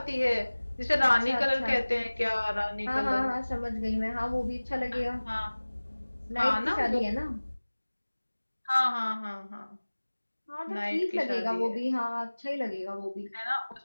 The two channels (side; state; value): both; inverted; correlation -1.00